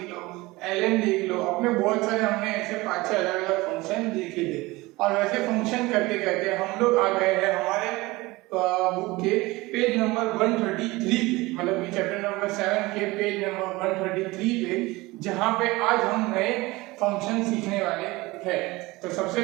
लो, ln देख लो, अपने बहुत सारे हमने ऐसे 5-6 अलग-अलग फंक्शन देखे थे। और वैसे फंक्शन करते करते हम लोग आ गए हैं हमारे बुक के पेज नंबर 133 पे, मतलब कि चैप्टर नंबर 7 के पेज नंबर 133 पे, जहां पे आज हम नए फंक्शन सीखने वाले हैं। तो सबसे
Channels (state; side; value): quieter; left; 21.2 dB